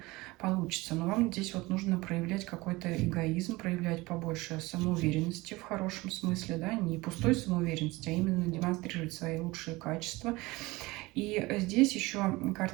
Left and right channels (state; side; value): quieter; left; 21.6 dB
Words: получится. Но вам здесь вот нужно проявлять какой-то эгоизм, проявлять побольше самоуверенности в хорошем смысле, да, не пустой самоуверенности, а именно демонстрировать свои лучшие качества. И здесь еще